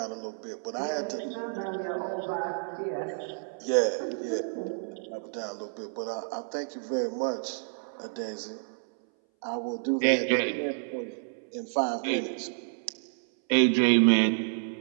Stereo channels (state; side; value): silent; left; 58 dB below the other